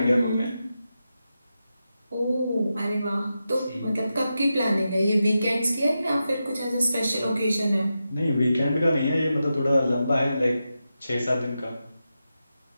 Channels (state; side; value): inverted; both; correlation -0.89